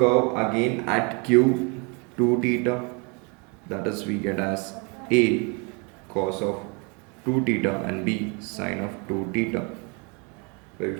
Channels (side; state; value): left; quieter; 32.6 dB